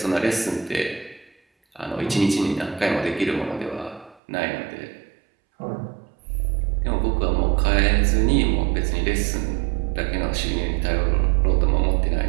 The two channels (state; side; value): drops out; left; at 4.2 s